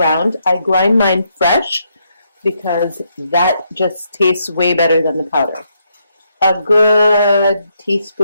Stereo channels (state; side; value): inverted; both; correlation -0.76